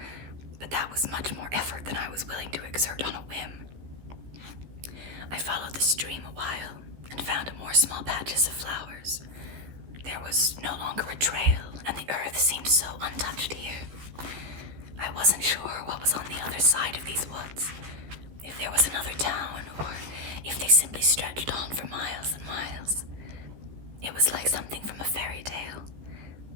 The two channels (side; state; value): left; late; 15 ms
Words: but that was much more effort than I was willing to exert on a whim. I followed the stream a while and found more small patches of flowers. There was no longer a trail, and the earth seemed so untouched here. I wasn't sure what was on the other side of these woods, if there was another town, or if they simply stretched on for miles and miles. It was like something from a fairy tale.